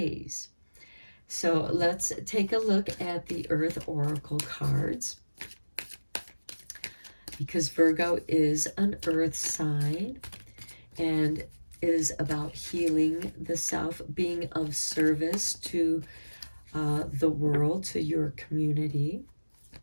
So let's take a look at the Earth Oracle cards, because Virgo is an earth sign and is about healing the self, being of service to the world, to your community.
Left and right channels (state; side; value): inverted; both; correlation -1.00